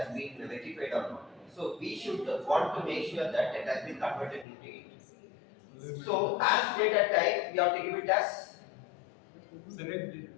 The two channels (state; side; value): drops out; right; at 4.5 s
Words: been rectified or not. So we should want to make sure that it has been converted into int. So as data type, we have to give it as Select it.